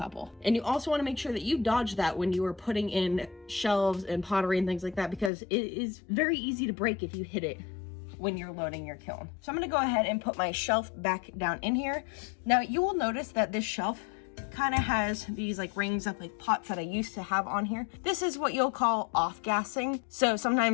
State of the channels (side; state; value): right; drops out; at 5.3 s